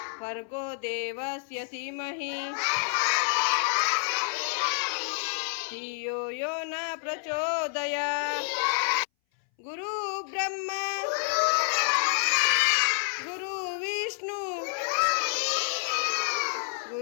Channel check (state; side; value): silent; right; 59 dB below the other